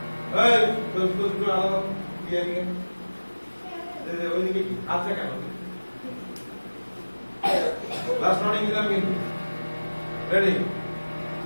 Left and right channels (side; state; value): both; inverted; correlation -1.00